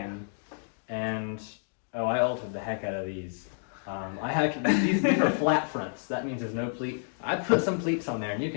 I altered the heck out of these. These are flat fronts. That means there's no pleat. I put some pleats on there, and you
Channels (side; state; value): right; silent; digital silence